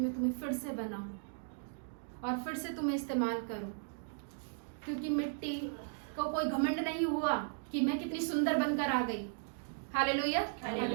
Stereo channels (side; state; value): left; silent; digital silence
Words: तुम्हें फिर से बनाऊं और फिर से तुम्हें इस्तेमाल करूं, क्योंकि मिट्टी को कोई घमंड नहीं हुआ कि मैं कितनी सुंदर बनकर आ गई। हालेलुया।